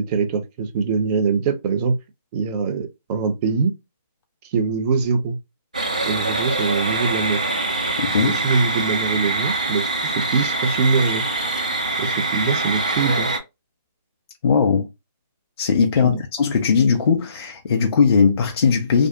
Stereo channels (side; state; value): both; inverted; correlation -0.56